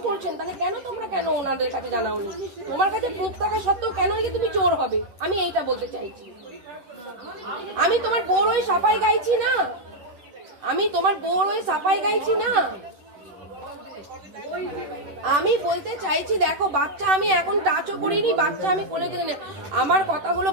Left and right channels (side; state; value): left; late; 10 ms